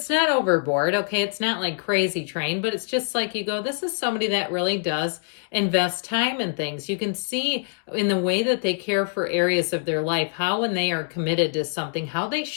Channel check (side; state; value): right; silent; digital silence